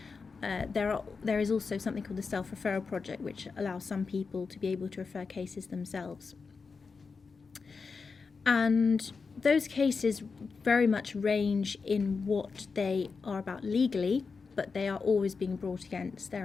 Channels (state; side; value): quieter; right; 4.8 dB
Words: There is also something called the self-referral project, which allows some people to be able to refer cases themselves. And those cases very much range in what they are about legally, but they are always being brought against